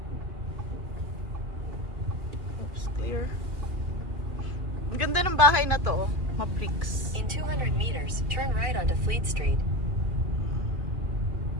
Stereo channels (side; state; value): left; late; 2.5 ms